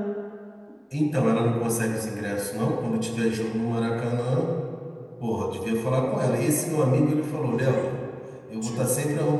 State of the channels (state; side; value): identical; both; correlation 1.00